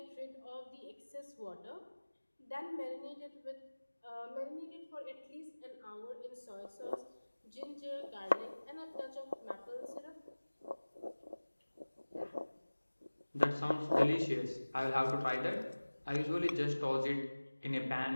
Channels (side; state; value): both; inverted; correlation -1.00